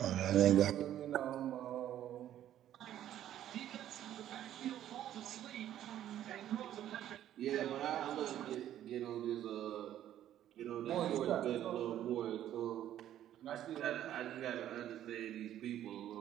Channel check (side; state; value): left; quieter; 11.7 dB